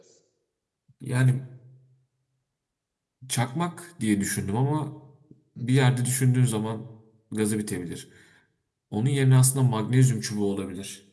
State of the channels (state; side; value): identical; both; correlation 1.00